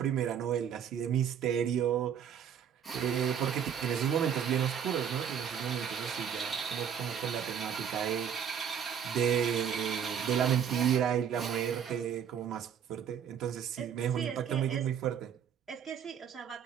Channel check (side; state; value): left; quieter; 8.3 dB